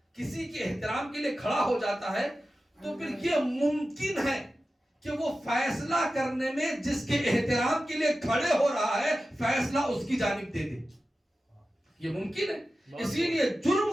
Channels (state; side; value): normal; both; correlation 0.94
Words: کسی کے احترام کے لیے کھڑا ہو جاتا ہے تو پھر یہ ممکن ہے کہ وہ فیصلہ کرنے میں جس کے احترام کے لیے کھڑے ہو رہا ہے فیصلہ اس کی جانب دے دے، یہ ممکن ہے۔ اسی لیے جرم